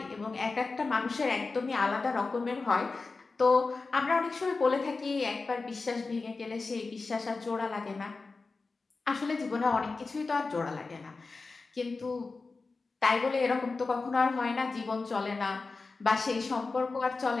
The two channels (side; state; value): right; quieter; 4.0 dB